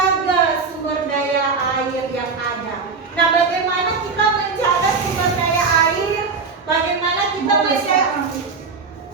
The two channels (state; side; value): quieter; left; 4.8 dB